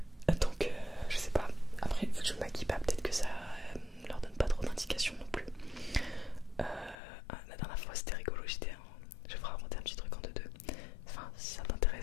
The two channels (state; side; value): drops out; right; at 7.0 s